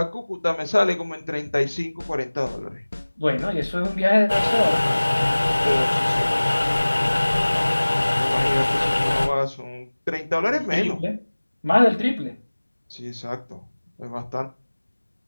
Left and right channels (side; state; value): both; inverted; correlation -1.00